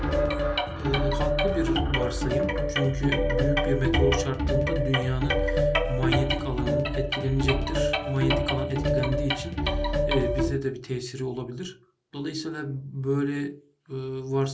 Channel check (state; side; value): identical; both; correlation 1.00